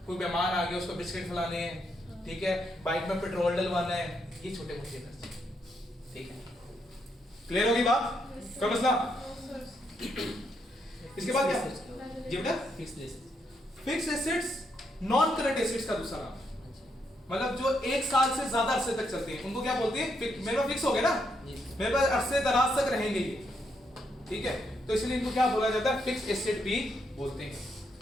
कोई मेहमान आ गया उसको बिस्किट खिलाने हैं, ठीक है, बाइक में पेट्रोल डलवाना है, ये छोटे मोटे खर्चे, ठीक है। क्लियर होगी बात, कोई मसला। इसके बाद क्या, जी बेटा, fixed assets. Fix assets non current assets का दूसरा नाम, मतलब जो एक साल से ज्यादा अरसे तक चलते हैं उनको क्या बोलते हैं, मेरे पास फिक्स हो गए ना, मेरे पास अरसे दराज तक रहेंगे ये, ठीक है, तो इसलिए इनको क्या बोला जाता है, फिक्स एसेट भी बोलते हैं।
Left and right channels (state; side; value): normal; both; correlation 0.78